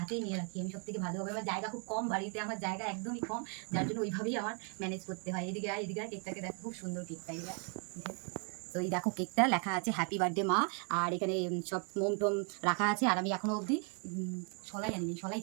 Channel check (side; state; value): left; quieter; 39.1 dB